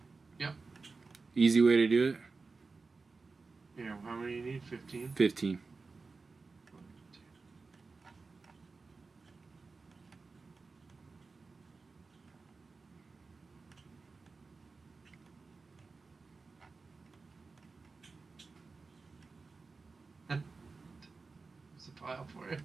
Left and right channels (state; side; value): quieter; left; 4.1 dB